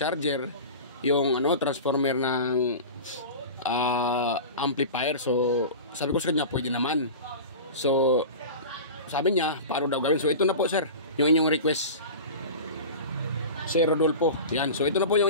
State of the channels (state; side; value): inverted; both; correlation -0.32